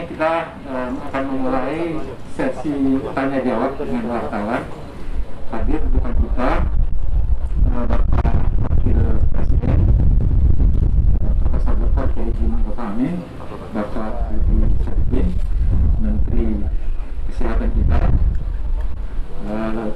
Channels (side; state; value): both; identical; correlation 1.00